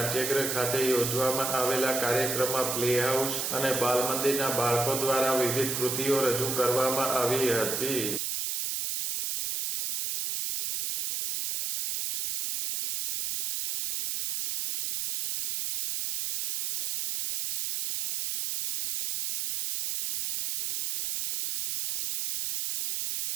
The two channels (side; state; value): right; noise; hiss, 2 dB below the sound